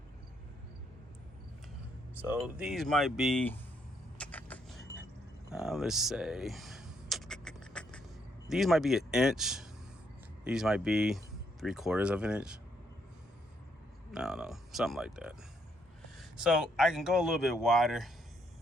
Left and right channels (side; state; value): both; normal; correlation 0.73